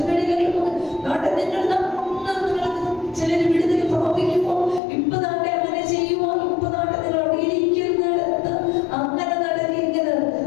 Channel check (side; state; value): right; drops out; at 4.8 s